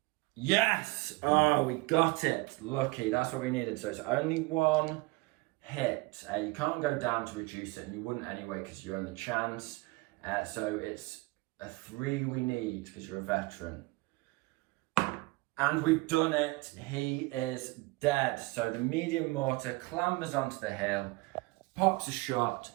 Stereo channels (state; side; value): quieter; left; 23.9 dB